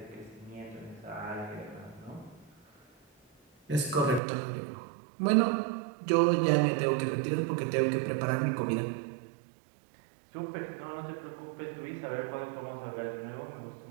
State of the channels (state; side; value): drops out; left; at 4.2 s